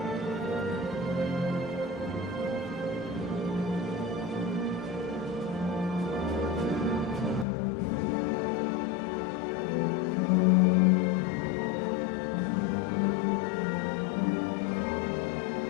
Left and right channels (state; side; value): drops out; right; at 7.5 s